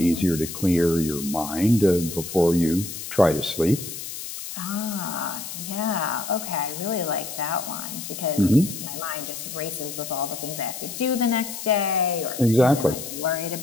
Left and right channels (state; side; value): noise; left; hiss, 9 dB below the sound